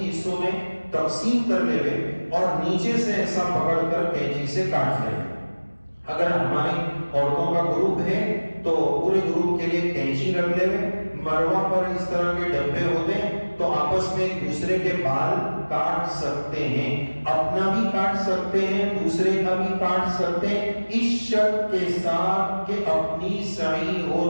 حصوں میں تقسیم کر لے اور نیچے سے ایسا پکڑ کر کینچی سے کاٹ لیں۔ اگر ہماری عورتوں کا گروپ ہے تو پورے گروپ کے لیے کینچی رکھ لے، مروہ پر اس طرح کے ڈبے ہوتے ہیں، تو آپس میں ایک دوسرے کے بال کاٹ سکتے ہیں، اپنا بھی کاٹ سکتے ہیں، دوسرے کا بھی کاٹ سکتے ہیں، اس شرط کے ساتھ کہ اپنی سعی ہو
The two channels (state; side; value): inverted; both; correlation -1.00